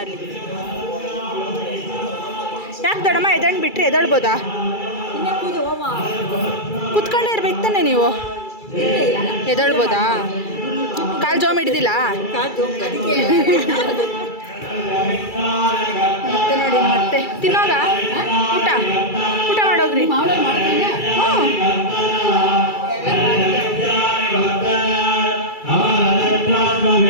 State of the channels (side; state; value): right; late; 2.3 ms